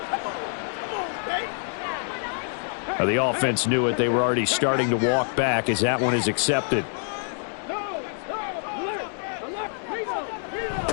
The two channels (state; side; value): silent; right; digital silence